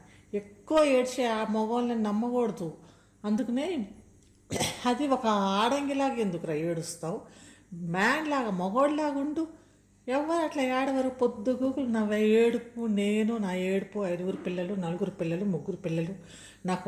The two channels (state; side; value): identical; both; correlation 1.00